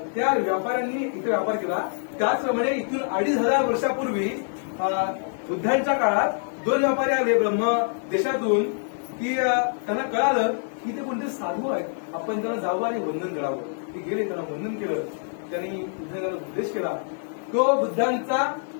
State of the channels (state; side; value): silent; right; 61 dB below the other